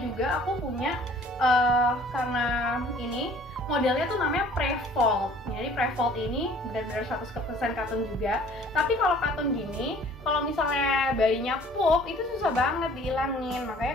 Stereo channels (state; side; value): normal; both; correlation 0.53